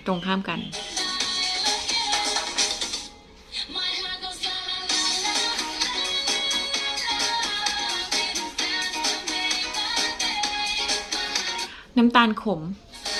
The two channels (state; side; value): identical; both; correlation 1.00